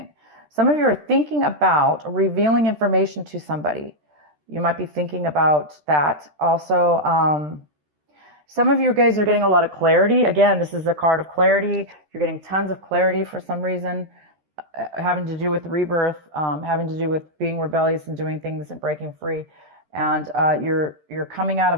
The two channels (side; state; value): left; late; 13 ms